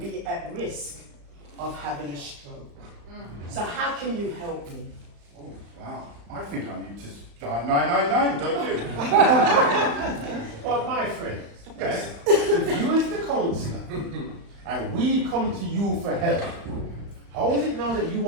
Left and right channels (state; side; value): late; left; 35 ms